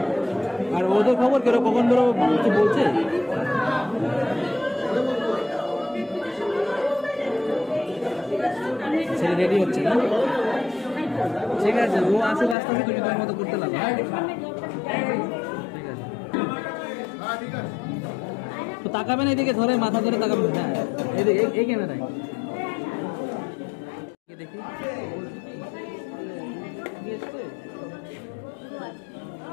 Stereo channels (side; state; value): right; drops out; at 12.6 s